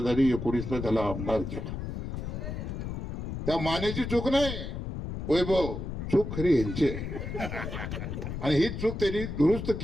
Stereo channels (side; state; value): left; noise; rumble, 5 dB below the sound